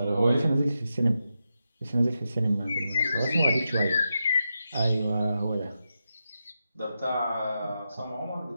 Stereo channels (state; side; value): inverted; both; correlation -0.87